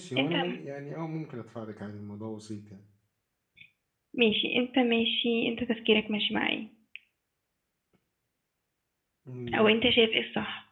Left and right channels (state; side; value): identical; both; correlation 1.00